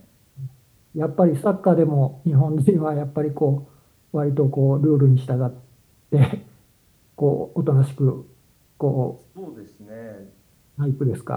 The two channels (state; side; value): identical; both; correlation 1.00